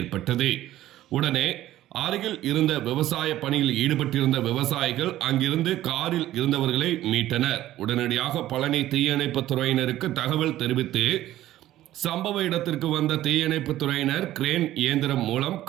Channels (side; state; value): left; quieter; 14.1 dB